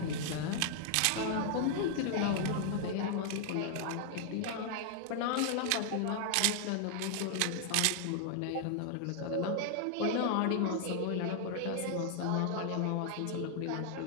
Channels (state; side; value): different; both; correlation 0.00